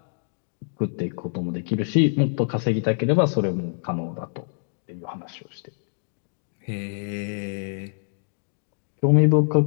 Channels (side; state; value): right; silent; digital silence